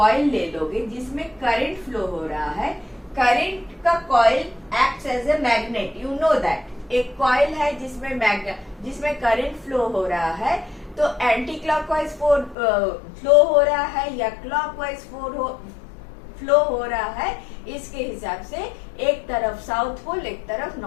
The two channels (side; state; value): right; drops out; at 12.6 s